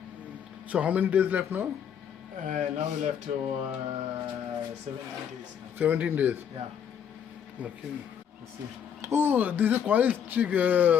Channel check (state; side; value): quieter; right; 8.3 dB